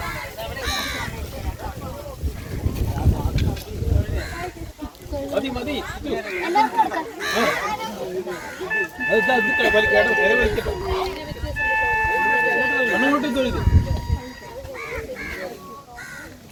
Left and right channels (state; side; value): identical; both; correlation 1.00